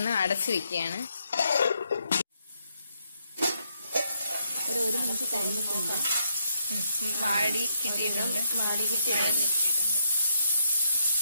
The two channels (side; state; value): both; inverted; correlation -0.77